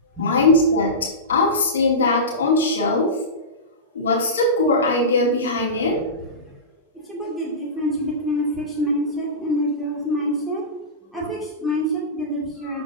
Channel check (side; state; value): both; normal; correlation -0.19